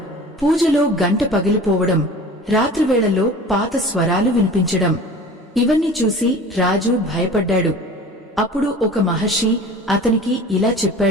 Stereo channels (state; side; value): normal; both; correlation 0.41